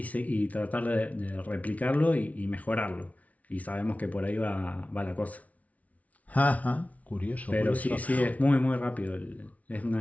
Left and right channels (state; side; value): late; right; 0.069 ms